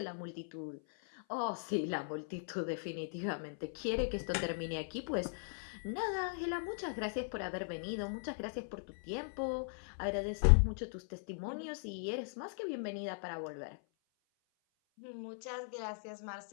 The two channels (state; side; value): silent; right; 52 dB below the other